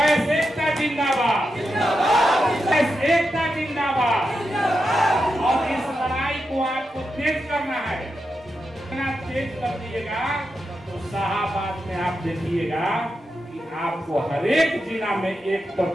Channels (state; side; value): normal; both; correlation 0.87